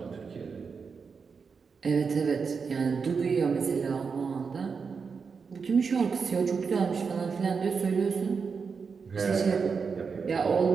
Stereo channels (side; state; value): left; quieter; 5.4 dB